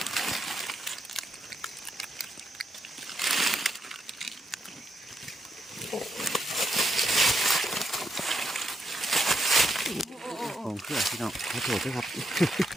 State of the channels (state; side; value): normal; both; correlation 0.80